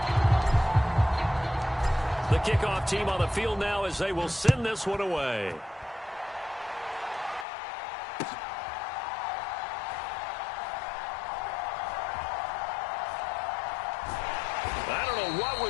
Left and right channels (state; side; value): drops out; right; at 7.5 s